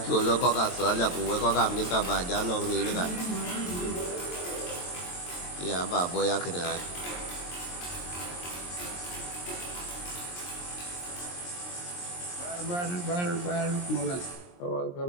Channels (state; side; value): late; right; 23 ms